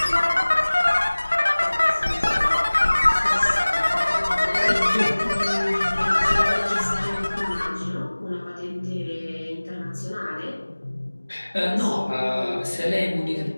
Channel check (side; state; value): both; inverted; correlation -1.00